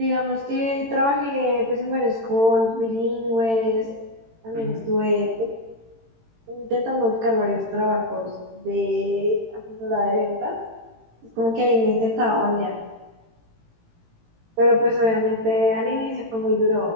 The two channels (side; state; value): left; late; 18 ms